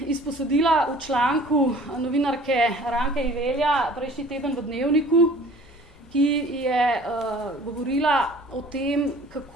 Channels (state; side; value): normal; both; correlation 0.48